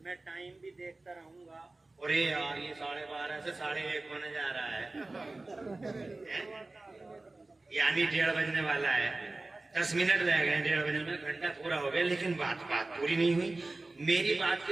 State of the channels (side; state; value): left; quieter; 3.1 dB